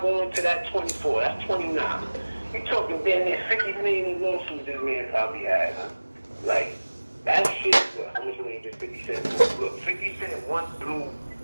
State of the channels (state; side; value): inverted; both; correlation -1.00